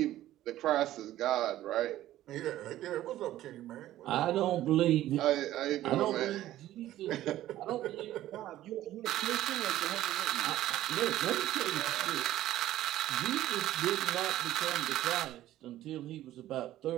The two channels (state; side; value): quieter; left; 14.0 dB